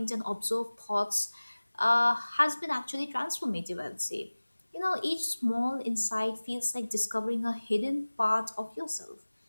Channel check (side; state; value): both; inverted; correlation -1.00